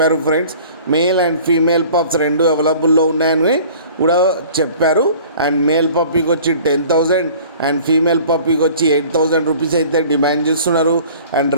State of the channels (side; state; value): both; inverted; correlation -0.47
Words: Friends, male and female pups రెండు అవైలబుల్లో ఉన్నాయని కూడా చెప్పారు. అండ్ మేల్ పప్పీకి వచ్చి 10,000 అండ్ ఫీమేల్ పప్పీకి వచ్చి 8,000 రూపీస్ అయితే డిమాండ్ చేస్తున్నారు. అండ్